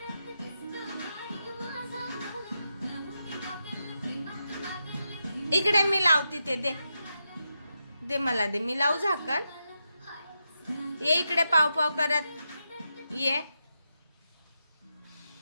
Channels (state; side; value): inverted; both; correlation -0.86